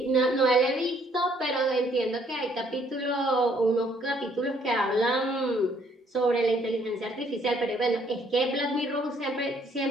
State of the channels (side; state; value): both; normal; correlation 0.65